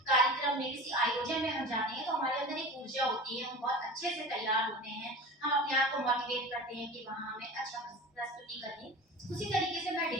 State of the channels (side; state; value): both; normal; correlation 0.34